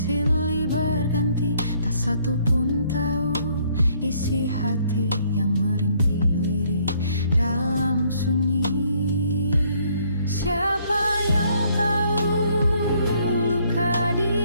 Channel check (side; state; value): both; inverted; correlation -0.65